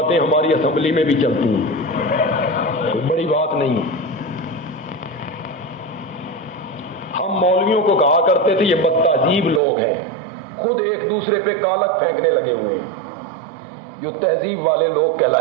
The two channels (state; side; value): drops out; left; at 9.6 s